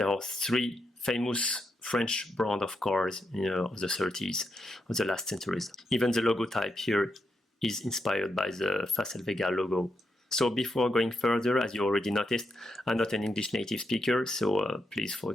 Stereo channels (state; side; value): normal; both; correlation 0.83